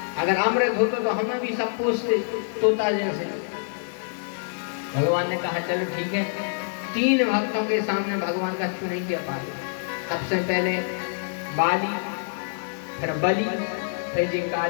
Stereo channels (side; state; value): right; silent; digital silence